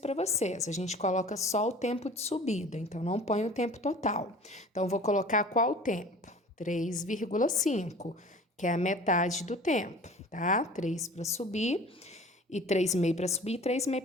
vocês, a gente coloca só o tempo de subida, então não põe o tempo total. Então, vou colocar qual tempo? 3,5, que é a metade do tempo, tá? 3 para subir e 3,5 para subir e 3,5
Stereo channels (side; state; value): both; normal; correlation 0.44